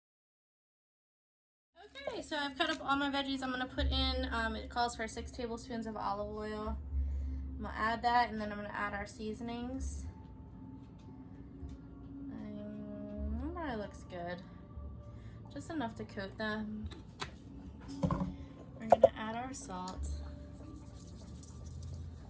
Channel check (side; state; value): both; identical; correlation 1.00